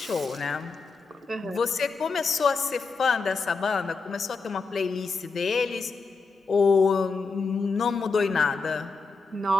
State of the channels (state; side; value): quieter; right; 4.5 dB